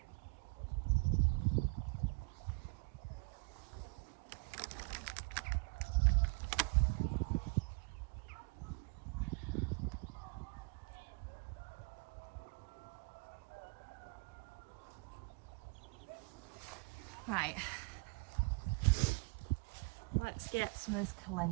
Right, let's get some of this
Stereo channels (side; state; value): left; quieter; 29.6 dB